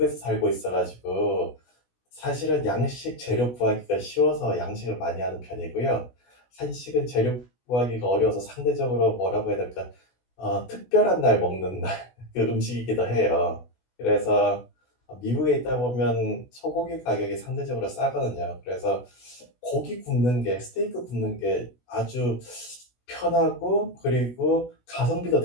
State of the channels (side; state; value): right; late; 16 ms